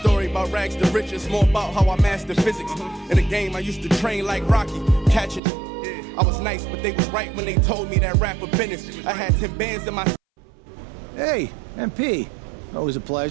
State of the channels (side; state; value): left; drops out; at 5.4 s